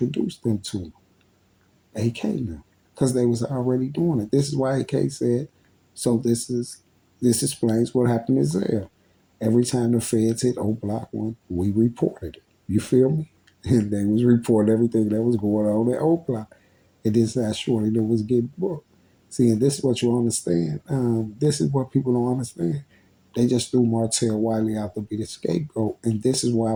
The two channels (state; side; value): identical; both; correlation 1.00